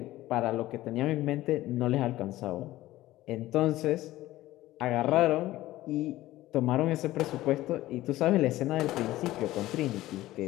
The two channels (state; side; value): quieter; right; 16.1 dB